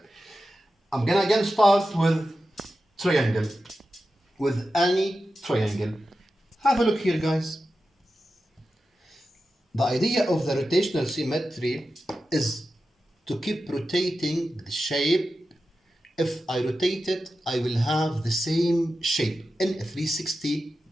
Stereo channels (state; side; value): normal; both; correlation 0.92